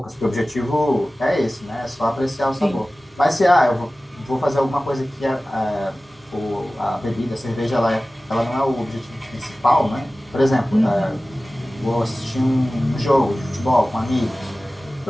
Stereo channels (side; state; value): both; normal; correlation 0.97